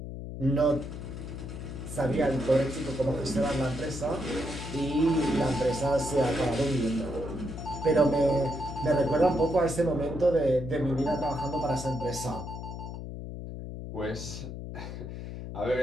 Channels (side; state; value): left; noise; hum, 8 dB below the sound